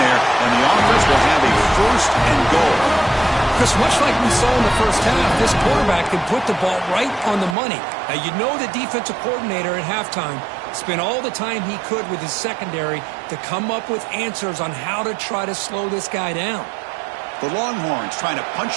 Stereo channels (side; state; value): left; drops out; at 7.6 s